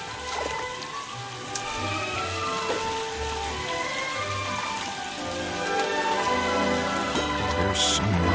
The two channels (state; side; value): identical; both; correlation 1.00